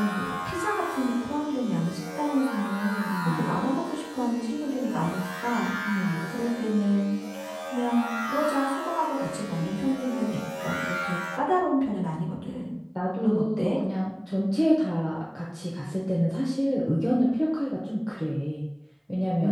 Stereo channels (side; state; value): both; identical; correlation 1.00